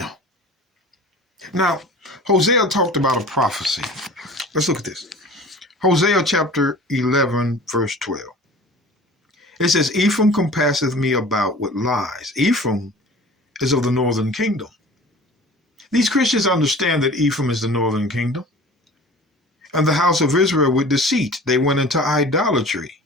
Now, Hosea talked about a prophecy. Let's look at this. Hosea chapter 11, verse 12. It says, Ephraim compasseth me about with lies. Ephraim is of the northern kingdom. These Christians understand that Ephraim is the northern kingdom. And the house of Israel with deceit. They went into idolatry,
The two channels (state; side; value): normal; both; correlation 0.42